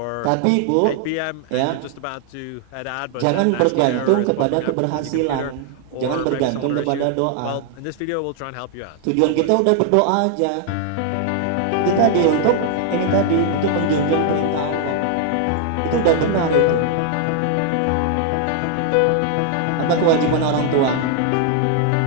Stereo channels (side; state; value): both; different; correlation 0.00